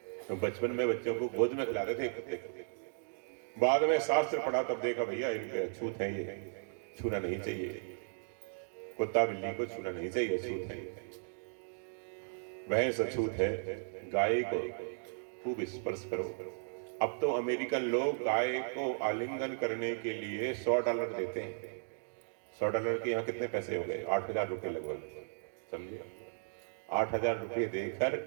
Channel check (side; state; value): left; silent; digital silence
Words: तो बचपन में बच्चों को गोद में खिलाते थे कुत्ते को। बाद में शास्त्र पढ़ा तब देखा भैया इन पे अछूत है, ये छूना नहीं चाहिए, कुत्ता बिल्ली को छूना नहीं चाहिए, अछूत है, भैंस अछूत है, गाय को खूब स्पर्श करो। अब तो अमेरिकन लोग गाय को आलिंगन करने के लिए $100 देते हैं। $100 के यहाँ कितने पैसे हो गए? 8,000 रुपये लगभग, समझे? 8,000 रुपये देकर